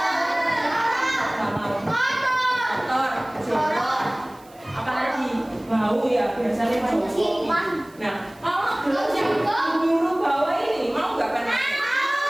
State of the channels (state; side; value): noise; right; hiss, 27 dB below the sound